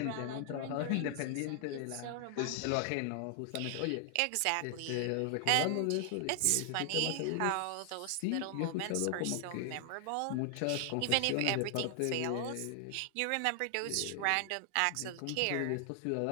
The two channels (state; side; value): different; both; correlation 0.00